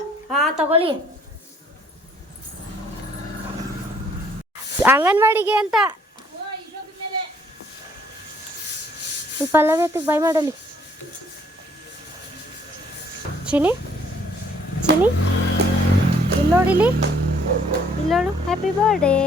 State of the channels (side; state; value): both; normal; correlation 0.63